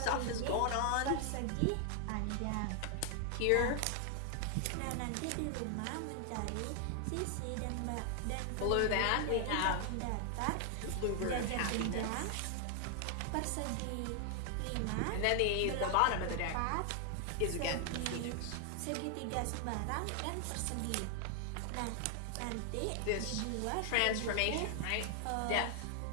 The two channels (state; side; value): different; both; correlation 0.00